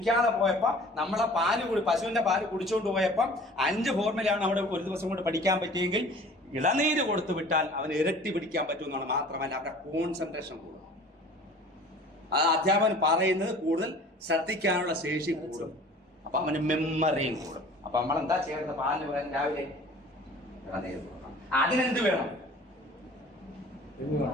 പോയപ്പോ നമ്മളെ പശുവിന്റെ പാല് കുടിച്ചുകൊണ്ട് പോയപ്പോ 5 ഫോർമുലയാണ് അവിടെ ഒരു ദിവസം കൊണ്ട് പഠിക്കാൻ പറ്റിയെങ്കിൽ ഇളനീര് കൊടുത്തു വിട്ടാൽ അവന് ഇരട്ടി പിടിക്കാൻ പറ്റുമെന്നാണ്. മാത്രമല്ല അവരുടെ കോൺസെൻട്രേഷൻ കൂടും. അത് അധ്യാപകൻ പറയുന്നത് കൂടുതൽ ശ്രദ്ധിക്കാനുള്ള ശേഷി കൂടും. അപ്പൊ അവന് മെമ്മറിയും കൂടും. അപ്പൊ നമ്മൾ എന്താ ചെയ്യേണ്ടത്? പാലിന് പകരം രാവിലെ ഇളനീര് കൊടുക്കണം. അതിനെന്ത് വേണം?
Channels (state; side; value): normal; both; correlation 0.46